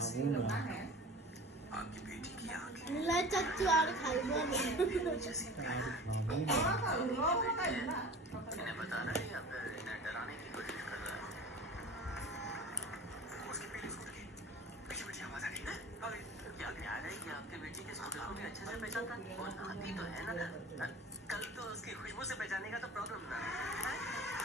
না आपकी बेटी की आंखें ला चाचू और खाइबो इन्हें बताना नहीं या फिर इन्हें डराने की कोशिश कर रहा है उसकी पीली स्कूटर की पीछे पीछे आवाज आ रही है क्या ख्याल है कि आपके बेटी के स्कूटर को भी अच्छे से पहचानता वो नाती तो है ना कल तो उसकी खुशबू से पहचानेगा तो प्रॉब्लम ना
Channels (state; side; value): normal; both; correlation 0.38